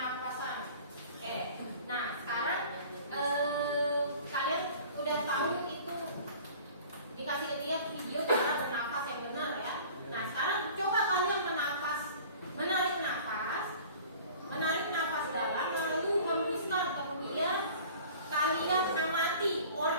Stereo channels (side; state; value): both; inverted; correlation -0.45